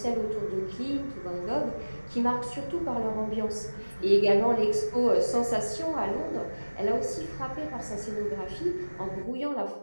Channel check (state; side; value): inverted; both; correlation -1.00